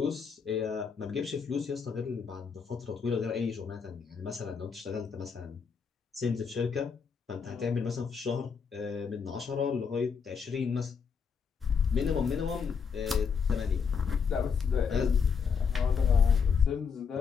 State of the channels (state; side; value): quieter; right; 6.1 dB